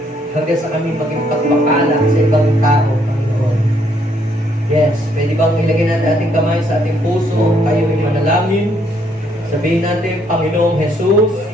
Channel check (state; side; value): normal; both; correlation 0.70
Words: hanggang sa kami maging pagpapala sa ibang tao, Panginoon. Yes, pwede bang ilagay natin ating kamay sa ating puso, tayo ay manalangin. Sabihin natin, Panginoong Jesus,